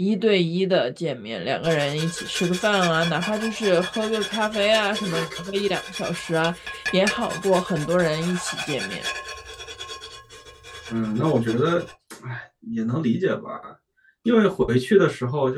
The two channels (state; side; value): identical; both; correlation 1.00